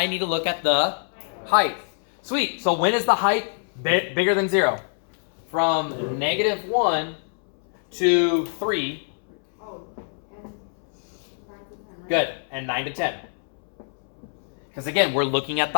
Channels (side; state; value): right; silent; 62 dB below the other